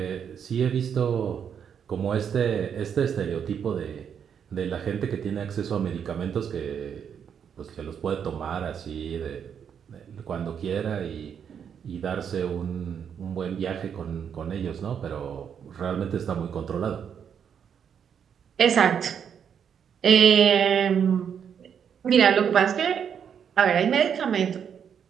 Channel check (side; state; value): left; quieter; 7.8 dB